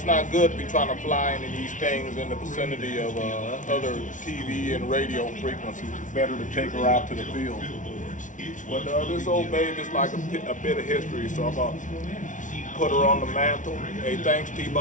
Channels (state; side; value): late; right; 0.37 ms